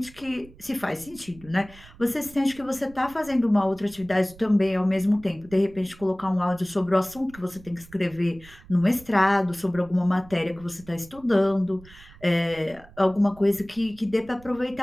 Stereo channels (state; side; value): noise; right; rumble, 22 dB below the sound